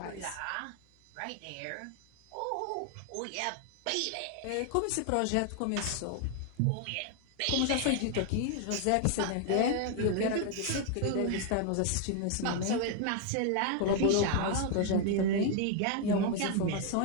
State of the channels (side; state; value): both; different; correlation 0.00